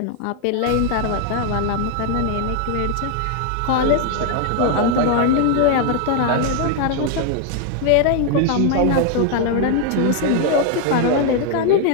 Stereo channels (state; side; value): different; both; correlation 0.00